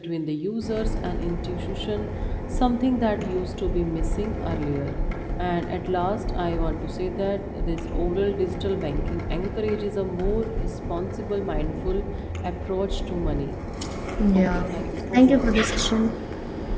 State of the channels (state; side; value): identical; both; correlation 1.00